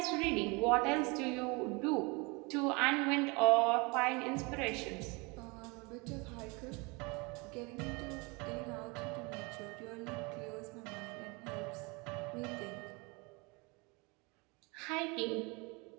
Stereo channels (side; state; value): left; quieter; 27.9 dB